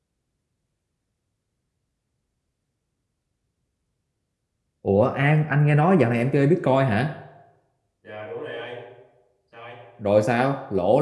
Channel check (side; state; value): both; identical; correlation 1.00